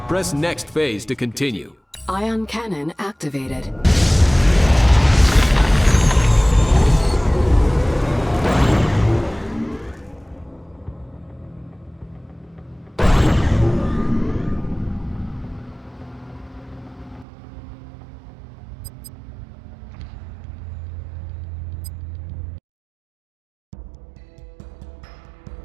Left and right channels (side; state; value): left; drops out; at 17.2 s